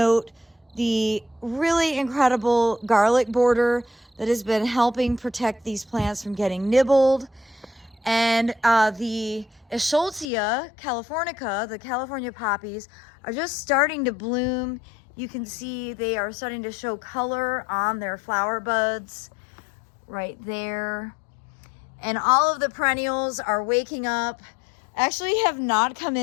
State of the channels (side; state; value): right; drops out; at 10.2 s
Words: the really incredible garlic border that has been helping protect these plants from getting nibbled. And the Eschscholzia californica, the California poppies, are just starting to bloom. You can see they are starting to show color on their flower buds right there. And all of the perennials are waking up. Actually have not come